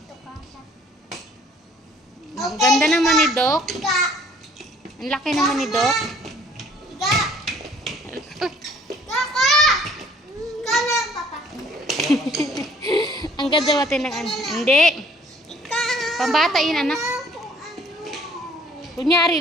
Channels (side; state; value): both; normal; correlation 0.58